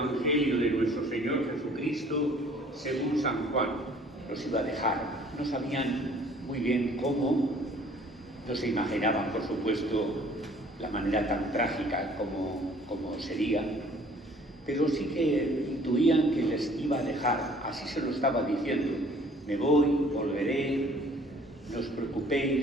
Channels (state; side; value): normal; both; correlation 0.55